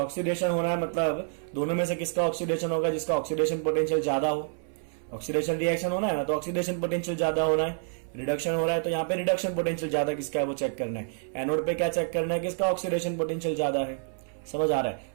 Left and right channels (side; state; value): left; silent; 59 dB below the other